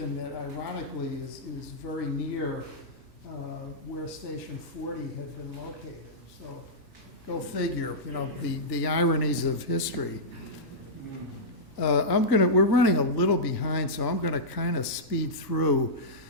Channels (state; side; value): normal; both; correlation -0.11